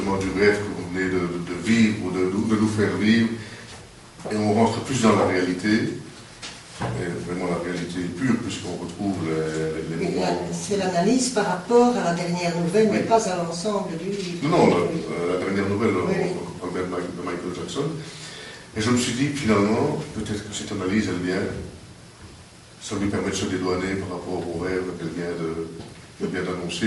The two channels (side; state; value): both; identical; correlation 1.00